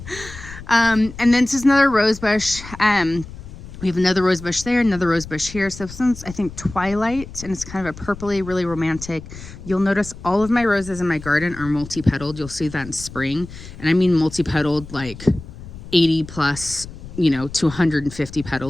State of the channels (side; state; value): left; noise; rumble, 14 dB below the sound